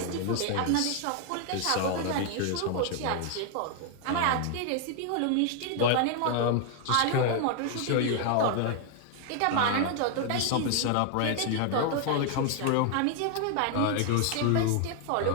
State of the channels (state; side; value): different; both; correlation 0.00